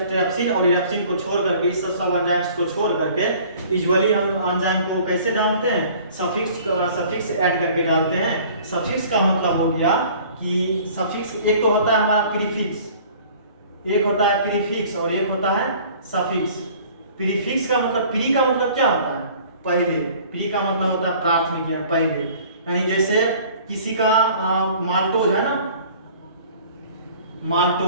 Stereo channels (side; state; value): both; inverted; correlation -0.50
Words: और इरेप्सिन को छोड़ करके, इस सब एंजाइम्स को छोड़ करके यूजुअली हम एंजाइम को कैसे डालते हैं, सफिक्स ऐड करके डालते हैं। सफिक्स का मतलब हो गया कि सफिक्स एक तो होता है हमारा प्रीफिक्स, एक होता है प्रीफिक्स और एक होता है सफिक्स। प्रीफिक्स का मतलब, प्री का मतलब क्या होता है, पहले, प्री का मतलब होता है प्राथमिक है, पहले, यानी जैसे किसी का माल्टोज है ना,